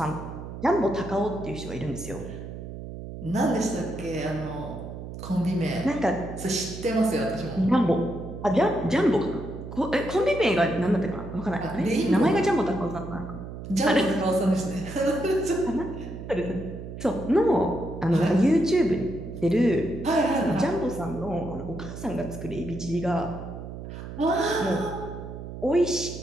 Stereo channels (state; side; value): noise; right; hum, 10 dB below the sound